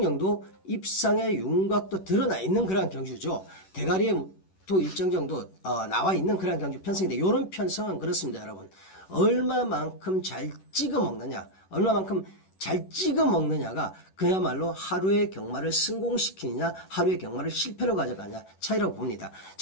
정도 입상의 윤곽도 드러나 있는 그런 경주죠. 대가리에 또 일정 정도 나와 있는 그런 경주 편성인데, 이런 편성은 그렇습니다, 여러분. 얼마만큼 잘 찍어 먹느냐가 그야말로 하루의 경마를 성공시키느냐, 하루의 경마를 실패로 가져가냐 차이라고 봅니다.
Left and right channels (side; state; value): right; late; 11 ms